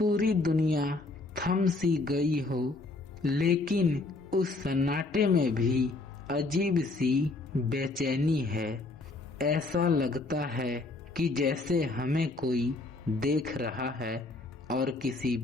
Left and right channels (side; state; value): right; quieter; 3.2 dB